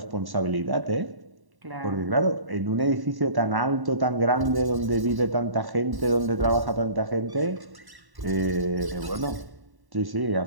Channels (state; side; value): late; left; 1.1 ms